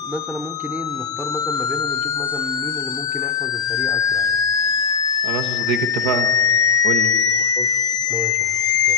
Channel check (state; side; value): quieter; right; 5.5 dB